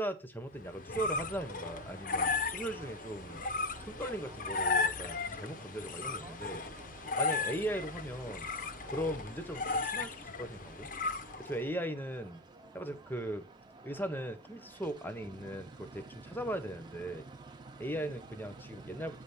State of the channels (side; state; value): both; normal; correlation 0.20